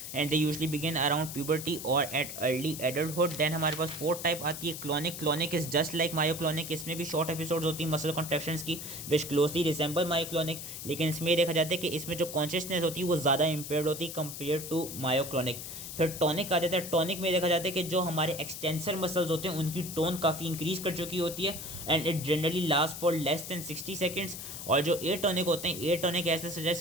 and they usually begin around puberty और एट अर्ली एडल्टहुड। देन हमारे पास 4th टाइप आती है clonic. Clonic is just like myoclonic. इसमें भी शॉर्ट एपिसोड्स होती हैं मसल कॉन्ट्रैक्शंस की विच क्लोजली रिसेंबल मायोक्लोनिक, लेकिन इसमें ये देखा जाता है कि इसमें जो कॉन्शियसनेस होती है वो ज़्यादा इम्पेयर्ड होती है कंपेयर टू मायोक्लोनिक। फिर टॉनिक आ जाता है। टॉनिक में देखा जाता है कि जो हमारे एक्सटेंसर मसल्स होते हैं उनकी टोन काफ़ी इंक्रीज कर चुकी होती है and it generally last for less than 60 seconds. और जो ए टॉनिक होते हैं, ए टॉनिक ऐसे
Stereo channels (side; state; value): left; noise; hiss, 9 dB below the sound